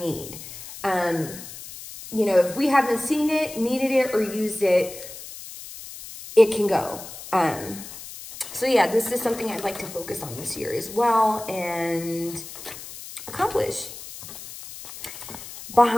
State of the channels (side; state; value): left; noise; hiss, 13 dB below the sound